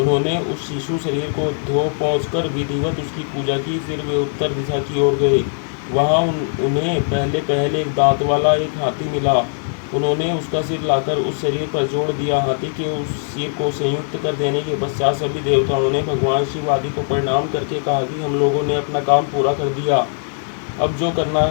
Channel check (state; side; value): silent; right; digital silence